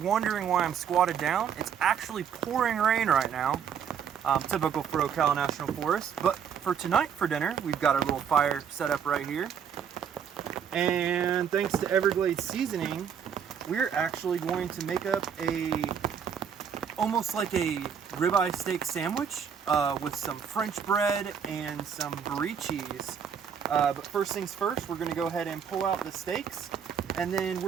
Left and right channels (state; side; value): quieter; left; 7.7 dB